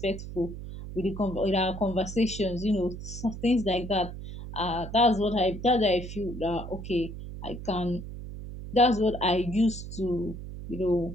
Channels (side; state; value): right; noise; hum, 10 dB below the sound